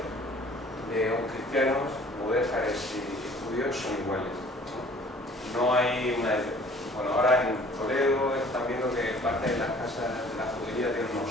de cristianos, mudéjares y judíos son iguales. No hay una... Bueno, ahora en Toledo están viendo que parte de las casas de la judería tienen unos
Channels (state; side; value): normal; both; correlation 0.53